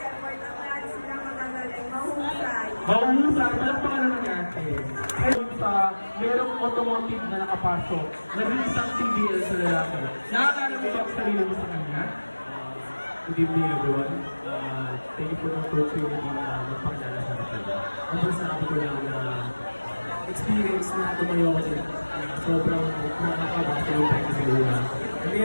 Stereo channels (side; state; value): both; inverted; correlation -1.00